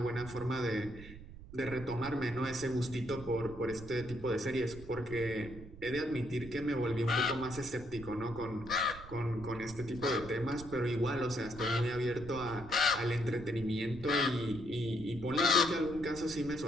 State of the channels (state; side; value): noise; right; rumble, 15 dB below the sound